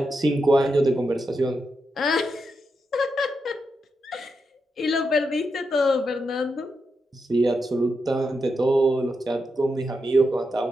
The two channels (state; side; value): normal; both; correlation 0.85